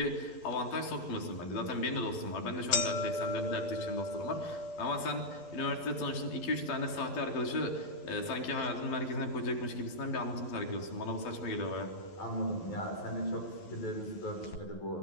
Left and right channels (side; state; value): right; late; 11 ms